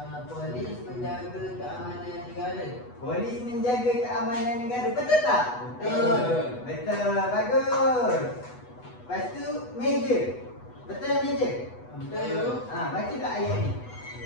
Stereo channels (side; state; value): right; late; 8.1 ms